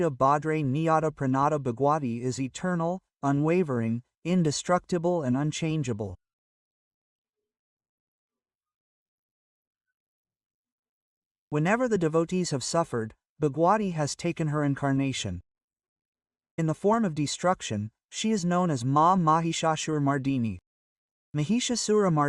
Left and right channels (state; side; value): identical; both; correlation 1.00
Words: Bhadre Niyata Pranata Bhagwati is eternal, unwavering, indestructible and unchangeable. Whenever the devotees have suffered, Bhagwati has taken her incarnation. In the form of destruction, she is known as Ma Mahishasura Mardini. Mahishasura